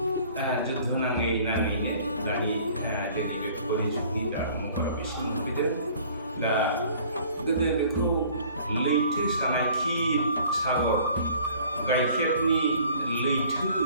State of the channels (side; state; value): both; inverted; correlation -0.52